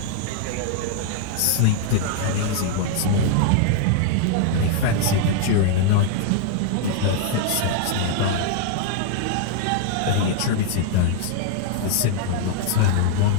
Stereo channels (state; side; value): different; both; correlation 0.00